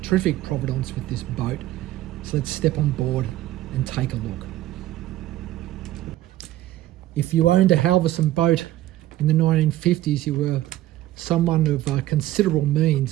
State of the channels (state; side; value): quieter; left; 14.8 dB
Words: Terrific provenance with this boat. So let's step on board and take a look. If you owned a Halverson boat in the 1950s, you were someone of considerable